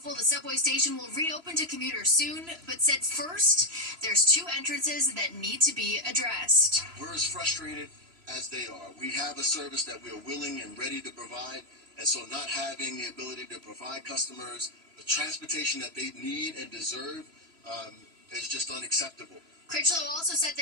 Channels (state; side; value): late; left; 3.0 ms